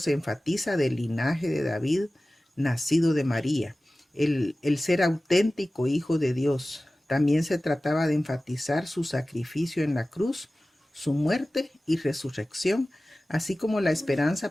enfatiza del linaje de David, nacido de María, el ser auténtico hijo de Dios. También se trataba de enfatizar su sacrificio en la cruz, su muerte y resurrección, así como la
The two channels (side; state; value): both; normal; correlation 0.97